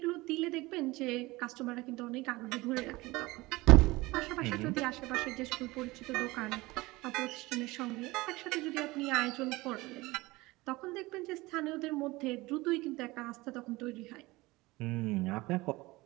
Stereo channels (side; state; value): left; quieter; 21.1 dB